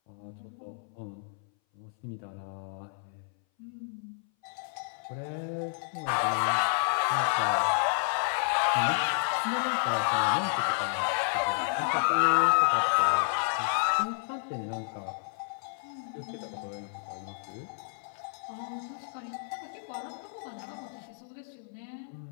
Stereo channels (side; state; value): right; silent; 57 dB below the other